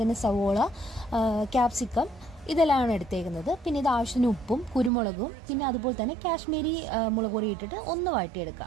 തന്നെ സവോള, ക്യാപ്സിക്കം ഇതെല്ലാമാണ് എടുത്തേക്കുന്നത്. പിന്നെ ഇത് ആവശ്യത്തിന് ഉപ്പും കുരുമുളകും പിന്നെ അതുപോലെ തന്നെ കാശ്മീരി മുളക് പൊടി ഇട്ടിട്ട് ഒന്ന്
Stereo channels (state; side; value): drops out; left; at 4.9 s